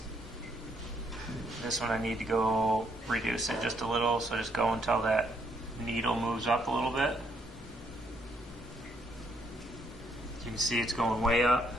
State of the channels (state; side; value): normal; both; correlation 0.71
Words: this one I need to go reduce it just a little, so just go until that needle moves up a little bit. You can see it's going way up.